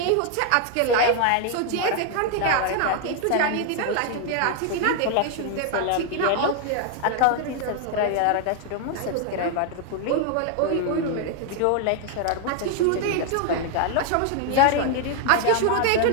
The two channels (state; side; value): different; both; correlation 0.00